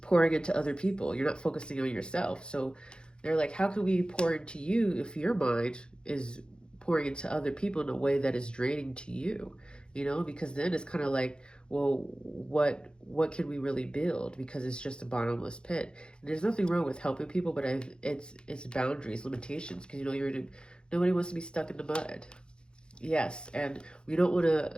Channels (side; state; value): right; late; 0.050 ms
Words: pouring into other people. You're not focusing on yourself. So they're like, how can we pour into you if your mind is pouring into other people in a way that is draining to you? Because then it's kind of like, well, what can we really build? Because it's just a bottomless pit. And there's nothing wrong with helping people, but it's boundaries, limitations, because nobody wants to be stuck in the mud. Yes, and we don't want